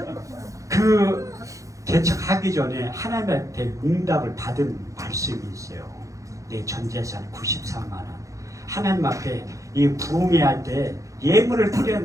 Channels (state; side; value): late; left; 0.15 ms